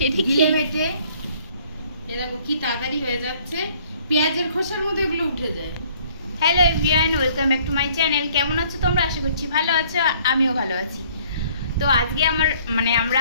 গিলে মেটে। এ দেখো কি তাড়াতাড়ি হয়ে যাচ্ছে, পেঁয়াজের খোসার মতো এগুলো উঠে যায়। Hello everyone, welcome back to my channel. কেমন আছো তোমরা? আশা করছি ভালো আছো, আমিও ভালো আছি। তো আজকে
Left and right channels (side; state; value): both; inverted; correlation -0.59